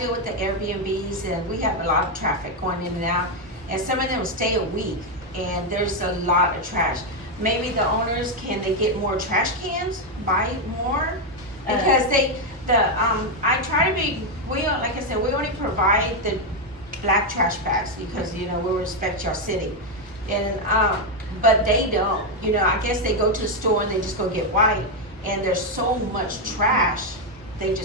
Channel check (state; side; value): normal; both; correlation 0.04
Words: with the Airbnbs and we have a lot of traffic going in and out. And some of them stay a week and there's a lot of trash. Maybe the owners, can they get more trash cans, buy more? Because I try to be, like I said, we only provide the black trash bags because, you know, we respect your city. And, but they don't, you know, I guess they go to the store and they just go get white and there's so much trash, they